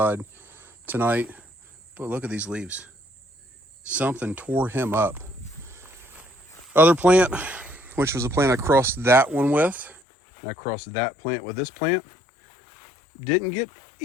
tonight. But look at these leaves. Something tore him up. Other plant, which was a plant I crossed that one with, and I crossed that plant with this plant, didn't get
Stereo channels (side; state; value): right; drops out; at 10.0 s